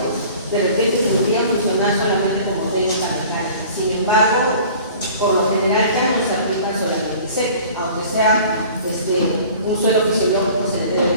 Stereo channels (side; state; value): both; inverted; correlation -0.46